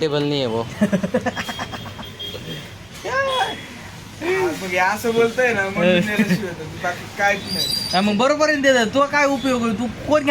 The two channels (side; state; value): right; noise; rumble, 27 dB below the sound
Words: नहीं है वो. मग हे असं बोलतोय ना मग मी नेल्याशिवाय तर बाकी काहीच नाही. हा, मग बरोबर आहे ना. तुला काय उपयोग आहे. तू कोण